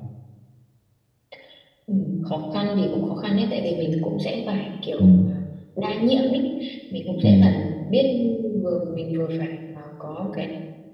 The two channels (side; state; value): both; identical; correlation 1.00